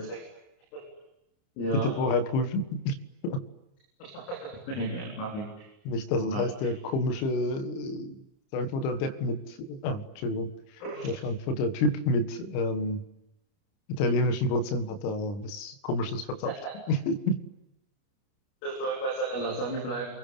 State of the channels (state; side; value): late; right; 29 ms